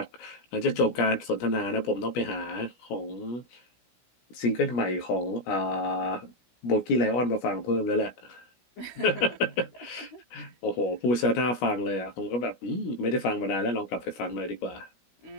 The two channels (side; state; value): right; late; 17 ms